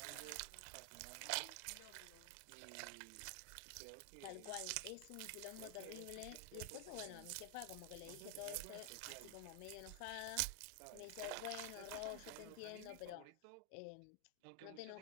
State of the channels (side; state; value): both; different; correlation 0.00